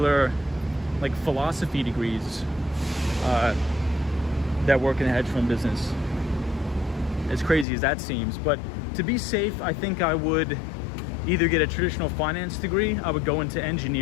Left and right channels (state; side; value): drops out; right; at 7.7 s